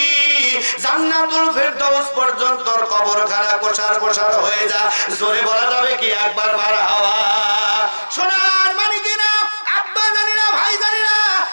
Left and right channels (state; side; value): inverted; both; correlation -1.00